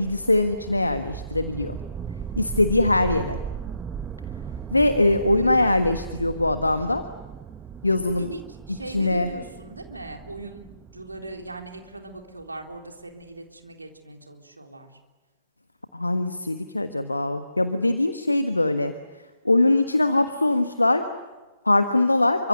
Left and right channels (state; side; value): inverted; both; correlation -0.87